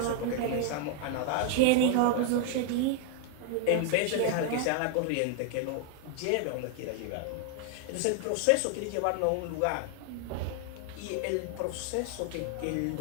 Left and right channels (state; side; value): different; both; correlation 0.00